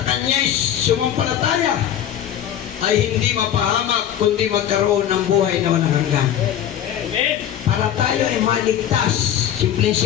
kanya'y sumampalataya ay hindi mapahamak kundi magkaroon ng buhay na walang hanggan. Para tayo ay maligtas,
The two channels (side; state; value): right; quieter; 10.4 dB